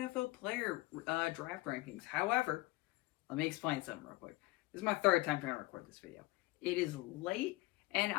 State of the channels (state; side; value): quieter; right; 20.8 dB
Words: player draft rankings. However, let me explain something real quick. This is my third time trying to record this video. It is late, and